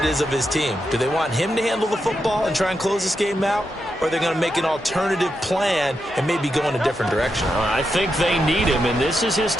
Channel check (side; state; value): both; normal; correlation 0.85